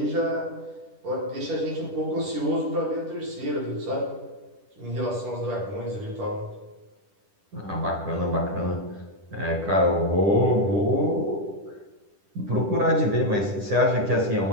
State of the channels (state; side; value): late; left; 10 ms